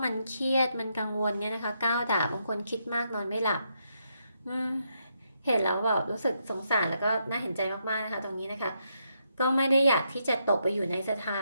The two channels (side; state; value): both; inverted; correlation -0.79